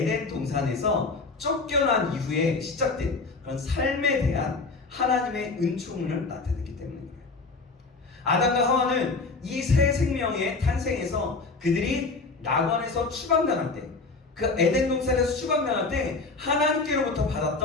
동산에서 쫓겨난 이후에 시작된 그런 삶에 대한 하나님의 은총을 나타냈기 때문입니다. 아담과 하와는 이 새 생명의 탄생에서 그들이 낙원에서 추방당할 때, 그 에덴 동산에서 추방당할 때 하나님께로부터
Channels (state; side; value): quieter; right; 3.9 dB